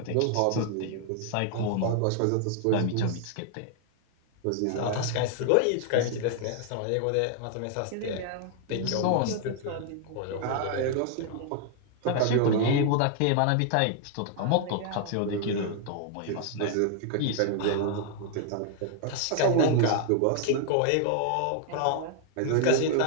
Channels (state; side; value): different; both; correlation 0.00